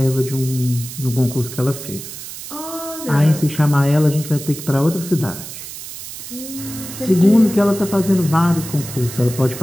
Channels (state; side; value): noise; right; hiss, 11 dB below the sound